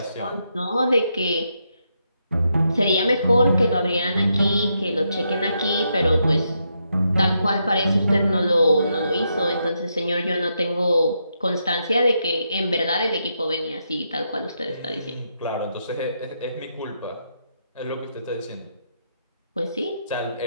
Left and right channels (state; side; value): inverted; both; correlation -0.81